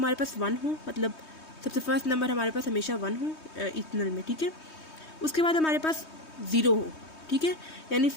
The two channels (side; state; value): right; late; 3.2 ms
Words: पास 1 हो, मतलब सबसे फर्स्ट नंबर हमारे पास हमेशा 1 हो इथनल में। ठीक है, उसके बाद हमारे पास 0 हो। ठीक है, यानी